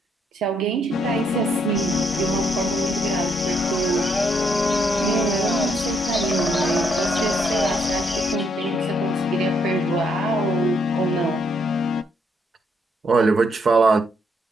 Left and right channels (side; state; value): both; normal; correlation 0.73